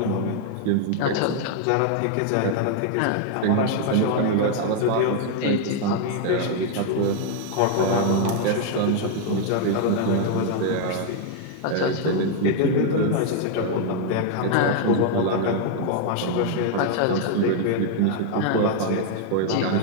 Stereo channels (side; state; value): both; different; correlation 0.00